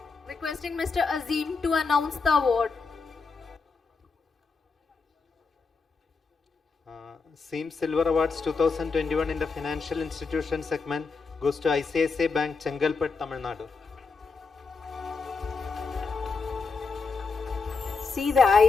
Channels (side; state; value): right; quieter; 4.6 dB